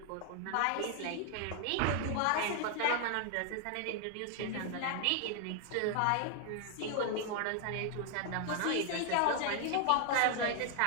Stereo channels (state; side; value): different; both; correlation 0.00